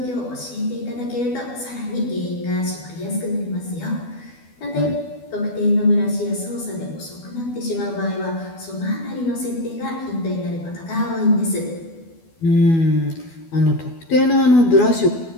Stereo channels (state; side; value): late; right; 12 ms